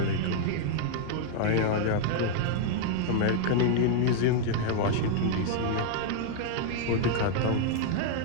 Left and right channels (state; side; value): different; both; correlation -0.01